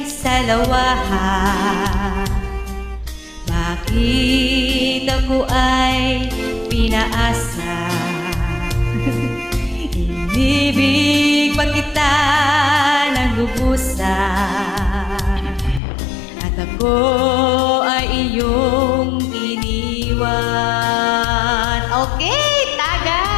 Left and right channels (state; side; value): drops out; right; at 15.8 s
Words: salawahan. Bakit ako ay pinaasa? Inibig pa kita ng lubusan at ako ay iyong iniwan. Okay,